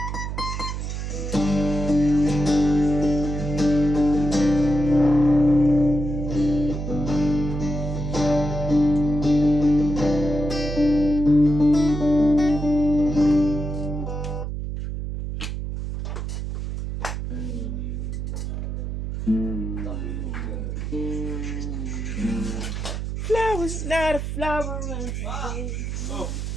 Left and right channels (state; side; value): noise; right; hum, 4 dB below the sound